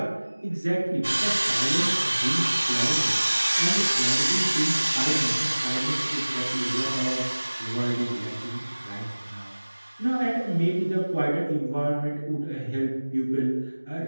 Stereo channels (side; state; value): both; inverted; correlation -1.00